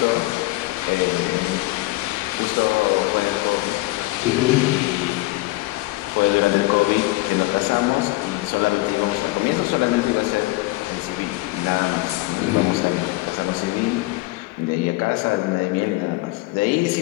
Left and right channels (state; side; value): quieter; right; 20.7 dB